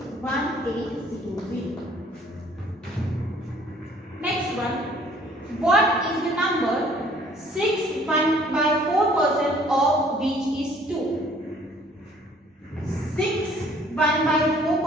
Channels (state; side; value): normal; both; correlation 0.57